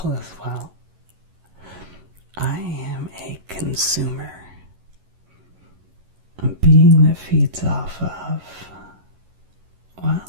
as well. I am a consumer, a being that feeds off of, well,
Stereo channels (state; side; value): late; left; 11 ms